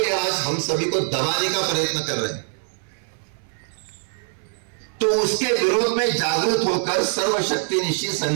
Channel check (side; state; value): left; silent; 57 dB below the other